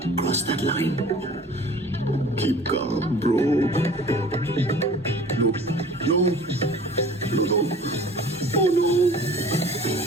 cross that line? Keep calm, bro. No, no, no, no. Oh no.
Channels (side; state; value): both; normal; correlation 0.46